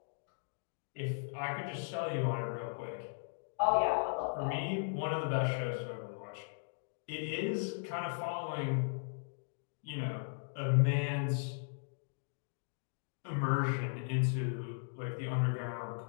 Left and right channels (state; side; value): silent; right; digital silence